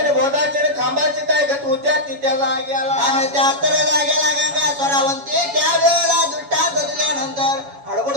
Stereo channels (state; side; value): late; left; 7.1 ms